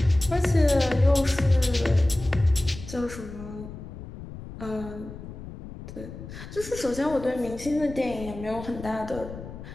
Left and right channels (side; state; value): left; noise; rumble, 12 dB below the sound